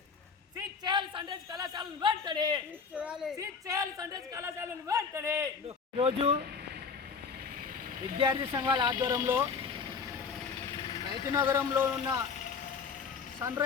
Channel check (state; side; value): quieter; right; 5.6 dB